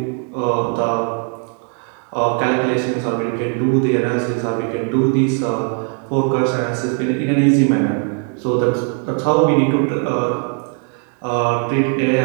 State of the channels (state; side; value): quieter; left; 39.3 dB